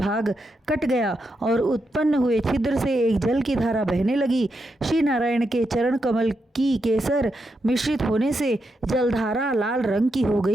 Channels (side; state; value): both; normal; correlation 0.84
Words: कट गया और उत्पन्न हुए छिद्र से एक जल की धारा बहने लगी। श्री नारायण के चरण कमल की केसर मिश्रित होने से जलधारा लाल रंग की हो